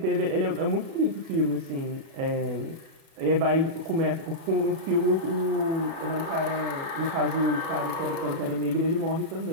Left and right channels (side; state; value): left; late; 36 ms